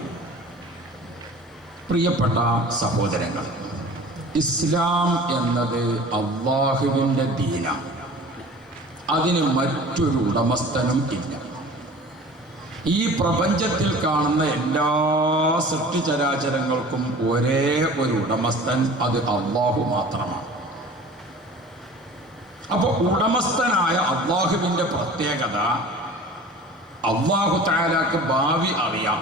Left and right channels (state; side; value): normal; both; correlation 0.42